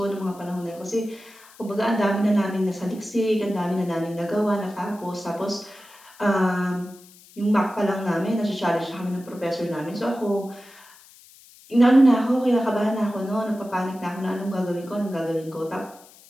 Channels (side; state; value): left; noise; hiss, 24 dB below the sound